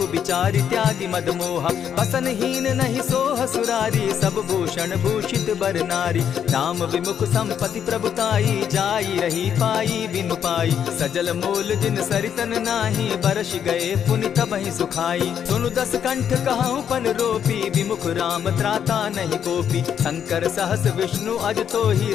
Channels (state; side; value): quieter; right; 8.6 dB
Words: बिचारी त्यागी मद मोहा। बसन हीन नहीं सोह सुरारी, सब भूषण भूषित बर नारी। राम विमुख संपति प्रभुताई, जाई रही पाई बिनु पाई। सजल मोल जिन सरितन नाही, बरस गए पुनि तबहि सुखाई। सुनु दस कंठ कहूँ पन रोपी, विमुख राम त्राता नहीं कोपी। शंकर सहस विष्णु अज तोहि,